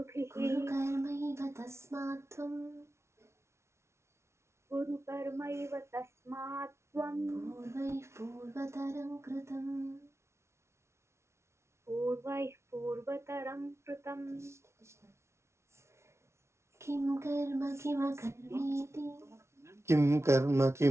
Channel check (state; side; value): late; left; 0.13 ms